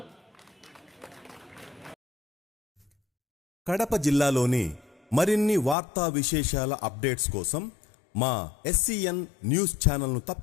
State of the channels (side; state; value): right; drops out; at 5.8 s